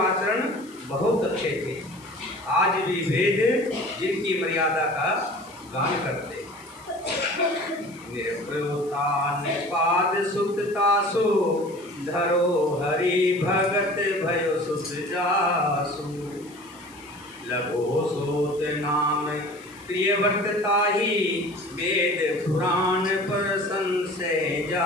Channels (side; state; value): left; noise; hiss, 24 dB below the sound